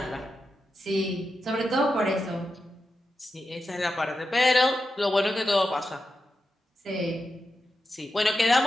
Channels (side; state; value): both; normal; correlation 0.89